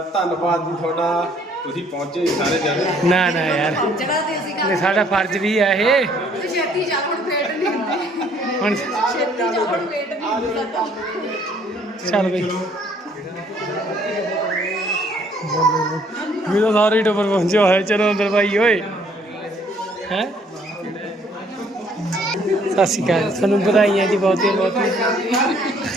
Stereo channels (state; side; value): normal; both; correlation 0.62